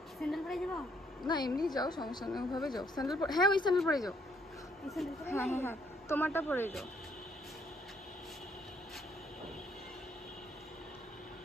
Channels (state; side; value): normal; both; correlation 0.69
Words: স্যান্ডেল পরে যাবো না এমনি যাও, সমস্যা নেই, ওভাবে যাও। স্যান্ডেল পরে, হ্যাঁ ওই স্যান্ডেল পরে যাও। হ্যাঁ হ্যাঁ হ্যাঁ তোমারটা পরে যাও।